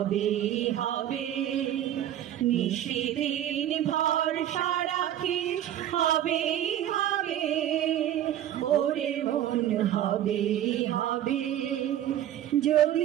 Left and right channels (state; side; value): quieter; left; 11.6 dB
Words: হবে। নিশিদিন ভরসা রাখিস হবে হবে ওরে মন হবে হবে।